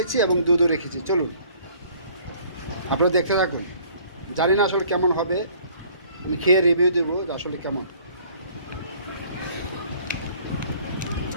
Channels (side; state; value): both; inverted; correlation -0.56